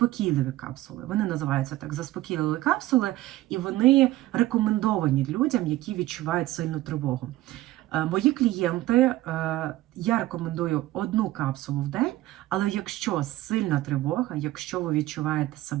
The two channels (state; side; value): quieter; left; 16.4 dB